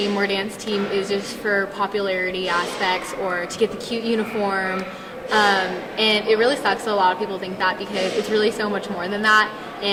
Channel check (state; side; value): identical; both; correlation 1.00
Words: or dance team is just for popularity aspects or to get the cute uniform. And it really sucks that a lot of people think that because it's really so much more than that.